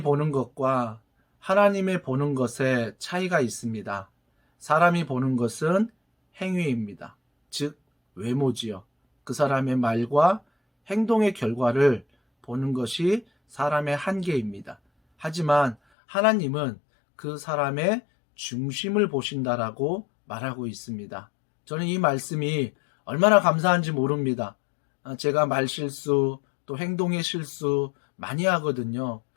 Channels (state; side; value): drops out; right; at 15.8 s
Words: 보는 것과 하나님의 보는 것에 차이가 있습니다. 사람이 보는 것은 행위입니다. 즉 외모지요. 그 사람의 말과 행동의 결과를 보는 것이 사람의 한계입니다. 하지만 하나님은 그 사람의 중심을 보신다라고 말하고 있습니다. 저는 이 말씀이 얼마나 감사한지 모릅니다. 제가 말실수 또 행동의 실수 많이 하거든요.